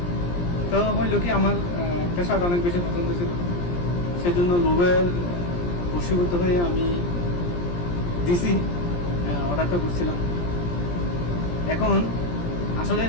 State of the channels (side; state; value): right; late; 17 ms